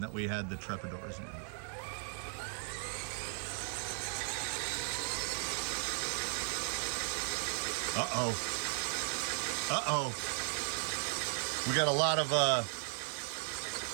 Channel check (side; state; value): left; silent; 53 dB below the other